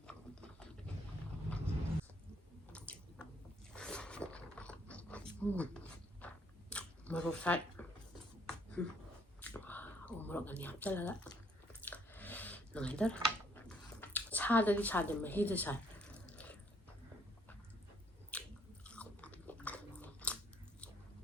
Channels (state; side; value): normal; both; correlation 0.66